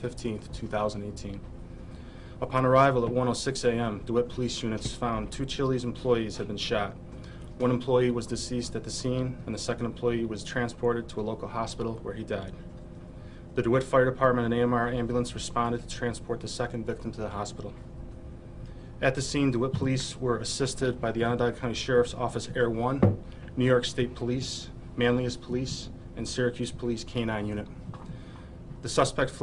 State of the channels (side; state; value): both; identical; correlation 1.00